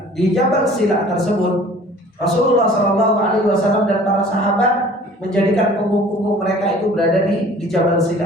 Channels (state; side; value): normal; both; correlation 0.49